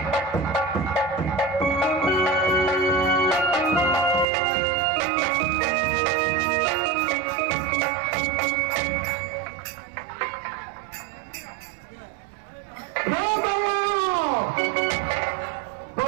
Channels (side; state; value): left; drops out; at 4.2 s